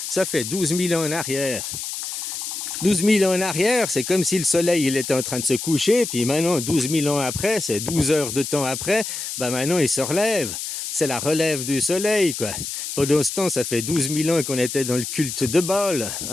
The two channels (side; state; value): left; noise; hiss, 6 dB below the sound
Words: Ça fait 12 000 ans en arrière. 12 000 ans en arrière, c'est comme si le soleil il était en train de se coucher, puis maintenant, 12 000 ans après, c'est 12 heures de temps après, ben maintenant il se relève. C'est la relève du soleil, quoi. Pendant ce temps, ça fait 12 000 ans qu'on était dans le culte de Baal,